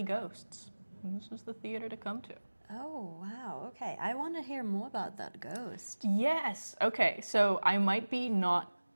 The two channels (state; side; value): inverted; both; correlation -1.00